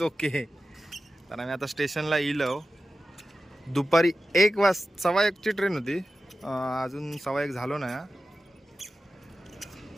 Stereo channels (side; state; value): both; normal; correlation 0.93